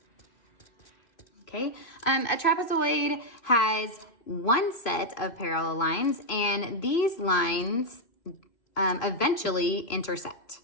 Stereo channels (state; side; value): late; right; 2.5 ms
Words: Okay, a trapezoid has one set of parallel lines, and these lines eventually intersect.